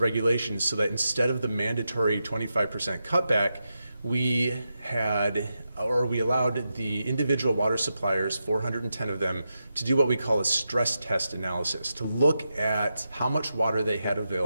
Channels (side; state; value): both; inverted; correlation -0.87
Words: so that instead of the mandatory 25% cutback, we allowed the individual water suppliers, 410 of them, to do what we call a stress test analysis, to look at how much water they had